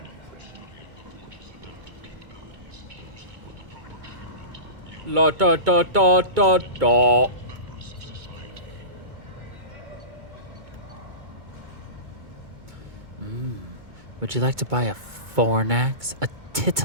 La da da da da da. Would you like to buy a Fornax, a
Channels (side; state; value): left; late; 2.2 ms